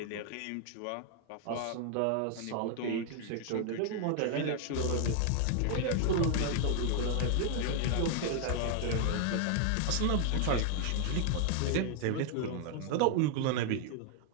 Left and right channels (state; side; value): different; both; correlation 0.00